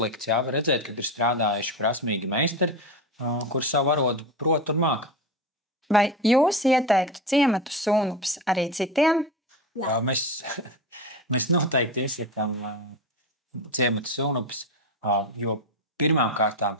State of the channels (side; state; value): both; normal; correlation 0.20